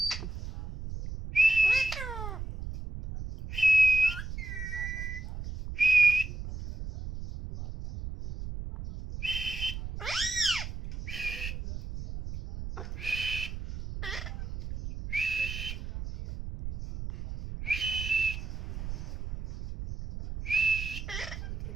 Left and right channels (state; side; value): noise; right; rumble, 8 dB below the sound